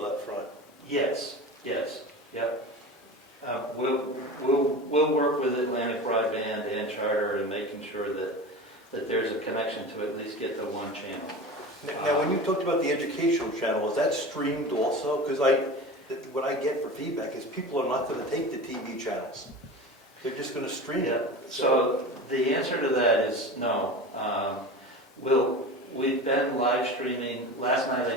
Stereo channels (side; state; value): both; normal; correlation 0.31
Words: up front. Yes, yep. We'll work with Atlantic Broadband and Charter in making sure that there's a connection to at least get the one channel. Now, when you talked about the educational channel, is that streamed also? Because what I get for feedback is people are not going to take the TV channels. They're just going to stream Yeah. it. So the answer to that is no. We've been live streaming. Last night I